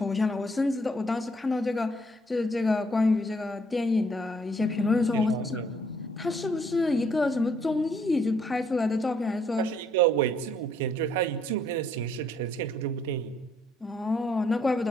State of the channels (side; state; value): both; normal; correlation 0.67